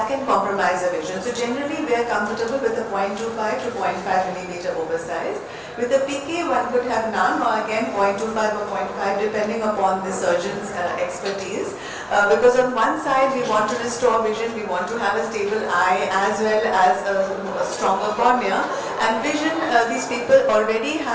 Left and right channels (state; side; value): identical; both; correlation 1.00